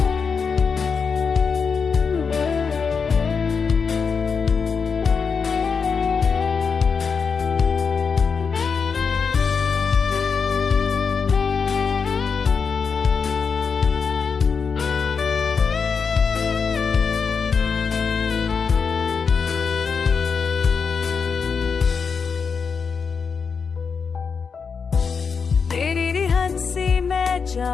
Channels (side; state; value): right; quieter; 5.7 dB